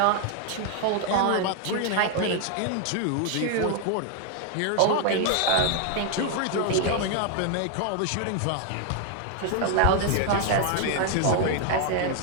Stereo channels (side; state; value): both; different; correlation 0.00